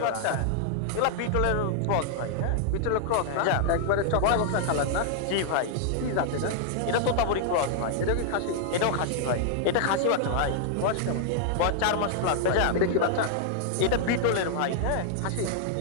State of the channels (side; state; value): both; different; correlation -0.01